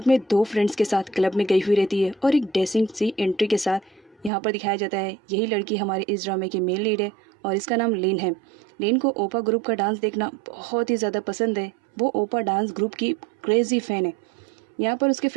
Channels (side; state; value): left; drops out; at 4.3 s